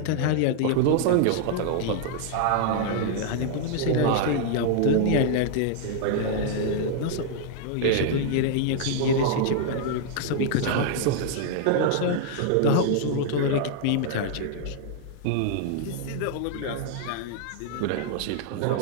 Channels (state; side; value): different; both; correlation 0.00